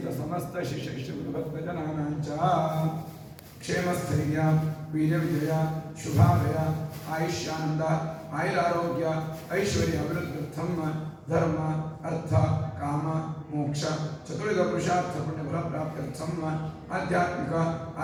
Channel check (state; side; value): identical; both; correlation 1.00